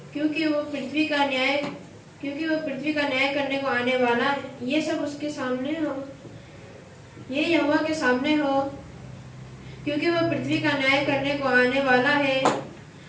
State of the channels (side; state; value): both; identical; correlation 1.00